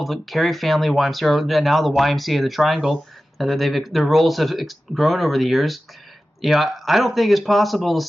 of the Carey Family YMCA, or now the YMCA of the Triangle. Their roles have grown over the years. I don't think it's possible to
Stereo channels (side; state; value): both; normal; correlation 0.95